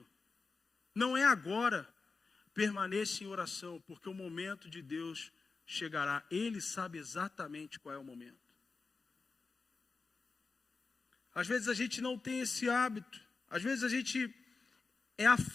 não é agora, permaneça em oração, porque o momento de Deus chegará. Ele sabe exatamente qual é o momento. Às vezes a gente não tem esse hábito, às vezes a gente é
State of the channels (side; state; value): right; quieter; 4.3 dB